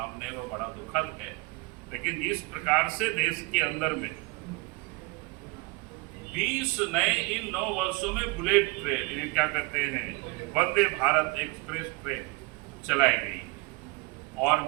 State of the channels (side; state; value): left; quieter; 26.1 dB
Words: वो बड़ा दुखद है। लेकिन जिस प्रकार से देश के अंदर में 20 नए इन 9 वर्षों में बुलेट ट्रेन क्या कहते हैं वंदे भारत एक्सप्रेस ट्रेन चलाई गई। और